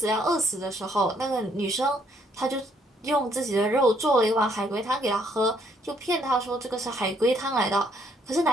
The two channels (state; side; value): normal; both; correlation 0.68